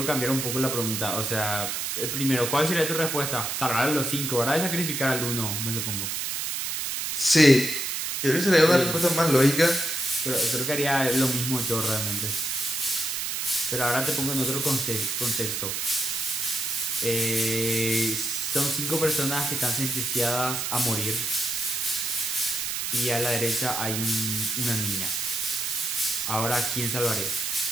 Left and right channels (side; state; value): right; noise; hiss, 2 dB below the sound